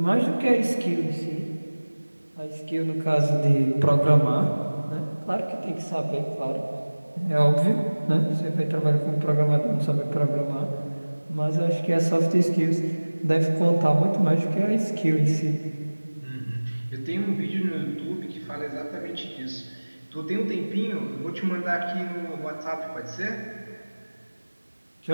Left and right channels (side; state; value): both; inverted; correlation -1.00